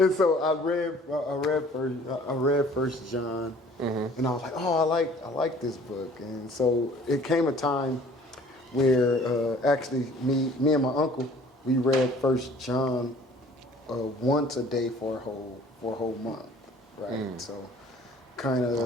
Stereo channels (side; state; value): both; normal; correlation 0.52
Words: so I read First John, mm-hmm. and I was like, oh, I like this book. And so it came a time where actually me and my uncle, we read First John once a day for a whole month, right? So kind of the